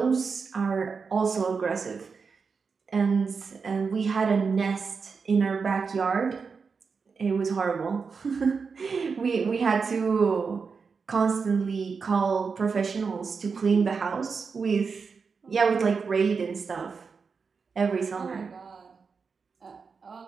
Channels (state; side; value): quieter; left; 5.3 dB